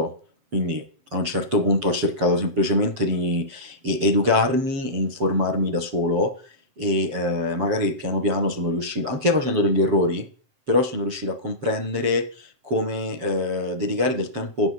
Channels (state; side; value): late; left; 7.7 ms